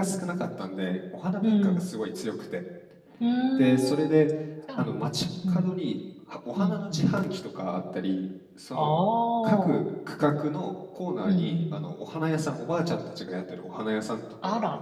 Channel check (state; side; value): identical; both; correlation 1.00